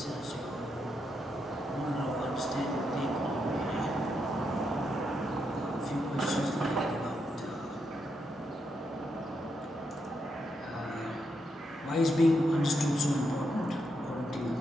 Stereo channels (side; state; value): both; normal; correlation 0.81